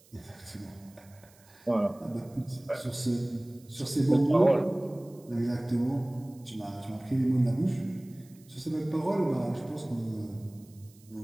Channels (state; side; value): noise; right; hiss, 27 dB below the sound